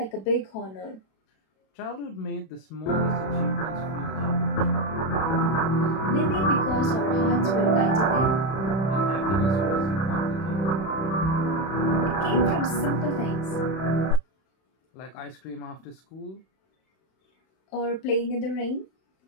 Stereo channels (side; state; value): right; late; 31 ms